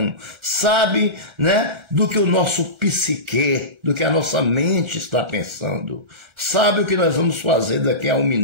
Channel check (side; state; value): left; late; 1.4 ms